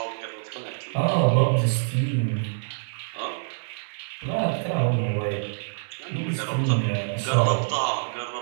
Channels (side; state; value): left; silent; digital silence